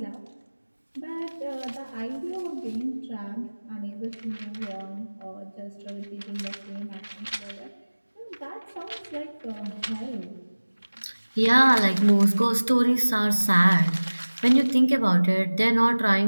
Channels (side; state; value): both; inverted; correlation -1.00